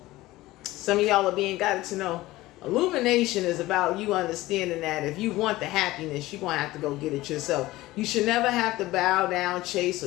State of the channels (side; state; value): right; quieter; 17.9 dB